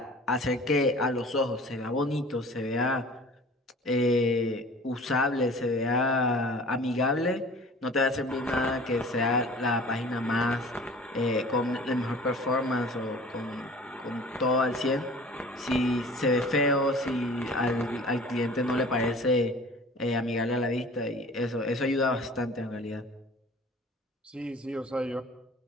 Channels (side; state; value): both; normal; correlation 0.45